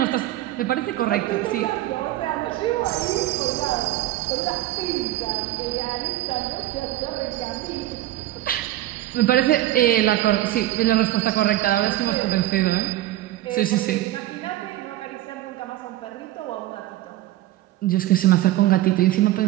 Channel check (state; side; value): quieter; left; 14.9 dB